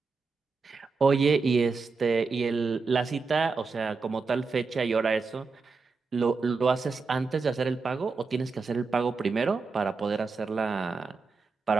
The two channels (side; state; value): left; quieter; 4.5 dB